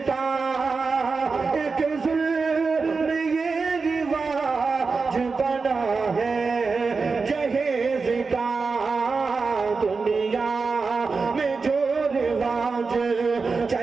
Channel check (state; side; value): quieter; left; 4.5 dB